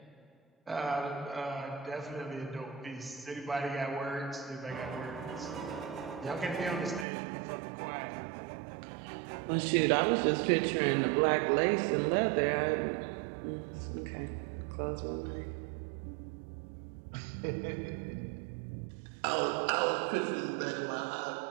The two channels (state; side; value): drops out; left; at 7.1 s